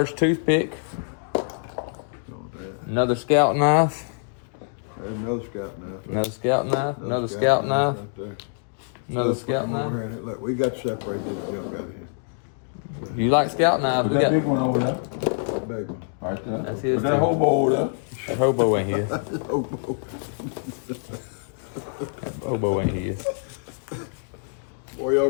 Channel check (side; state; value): right; silent; digital silence